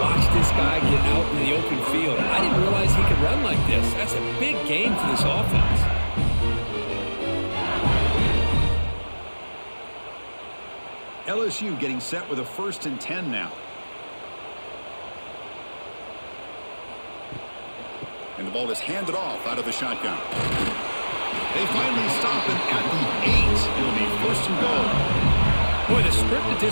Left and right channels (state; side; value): inverted; both; correlation -1.00